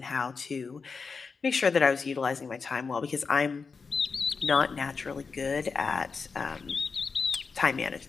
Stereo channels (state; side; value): quieter; right; 5.0 dB